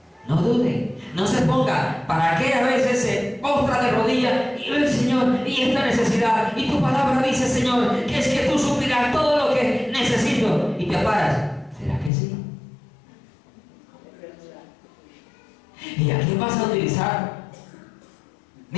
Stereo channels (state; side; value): drops out; right; at 12.1 s